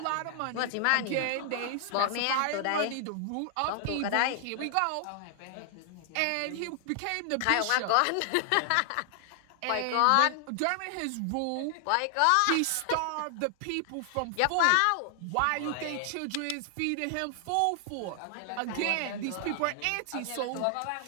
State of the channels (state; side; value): different; both; correlation 0.00